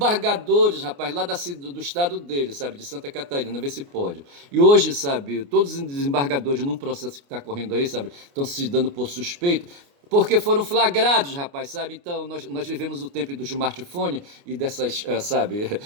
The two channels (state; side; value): late; left; 29 ms